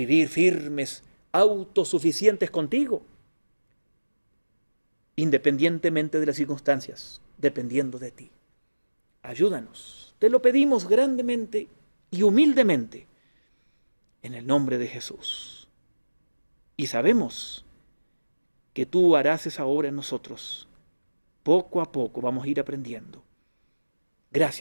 firmes, autosuficientes contigo, independientemente de las circunstancias, dependiendo de ti. Ayúdanos, te lo pedimos grandemente y humildemente, en el nombre de Jesús. Y sabemos que tú harás esa obra en nosotros. Poco a poco vamos a ir aprendiendo.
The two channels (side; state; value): both; inverted; correlation -1.00